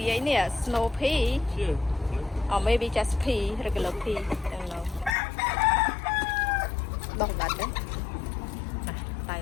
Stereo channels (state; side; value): drops out; right; at 5.2 s